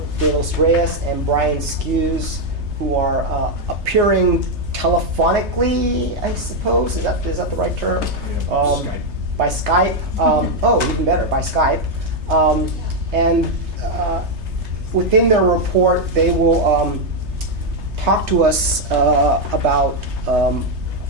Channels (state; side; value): late; left; 3.3 ms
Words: De Los Reyes and Brian Skews, who are appearing telephonically, I suppose. Is that the right term? Skype. By Skype. Even better, by Skype. Within their report, they will talk to us about